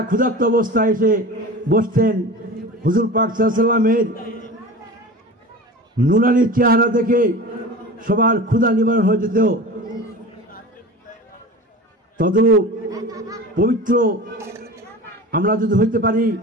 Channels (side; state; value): both; normal; correlation 0.34